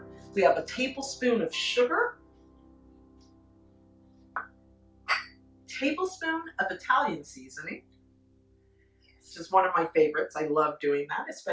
We have a tablespoon of sugar, tablespoon of Italian seasoning. This is one of my favorites. I love doing that,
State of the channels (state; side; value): identical; both; correlation 1.00